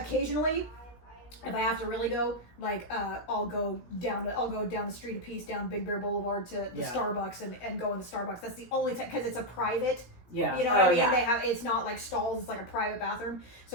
If I have to really go, like, I'll go down the street a piece down Big Bear Boulevard to the Yeah. Starbucks and go in the Starbucks. That's the only time because it's a private. Yeah. You know what I mean? yeah. They have it's not like stalls. It's like a private bathroom.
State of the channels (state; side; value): late; right; 17 ms